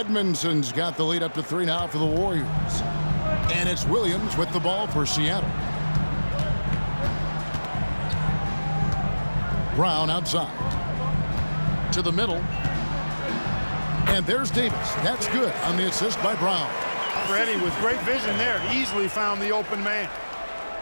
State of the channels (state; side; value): inverted; both; correlation -1.00